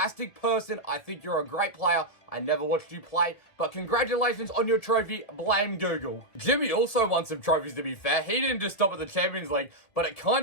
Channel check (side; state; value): right; late; 2.0 ms